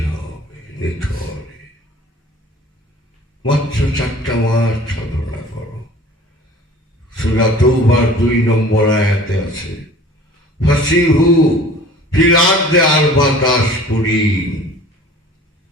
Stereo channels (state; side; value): normal; both; correlation 0.46